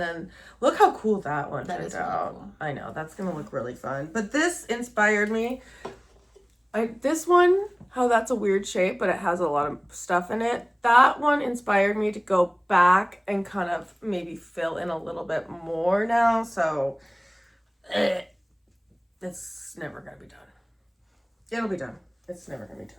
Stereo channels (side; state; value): both; identical; correlation 1.00